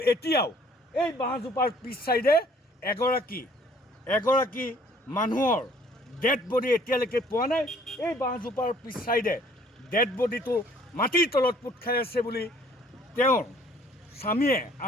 এতিয়াও এই বাঁহজোপাৰ পিছ চাইডে এগৰাকী মানুহৰ ডেড বডি এতিয়ালৈকে পোৱা নাই। এই বাঁহজোপাৰ পিছ চাইডে ডেড বডিটো মাটিৰ তলত পোত খাই আছে বুলি তেওঁৰ স্বামীয়ে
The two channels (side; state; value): both; normal; correlation 0.58